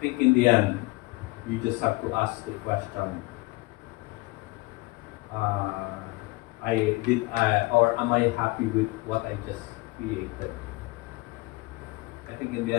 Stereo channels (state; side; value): quieter; right; 23.1 dB